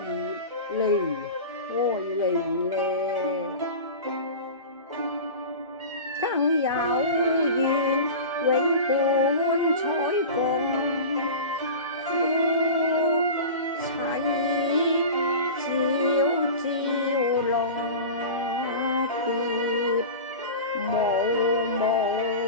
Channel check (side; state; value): both; inverted; correlation -0.31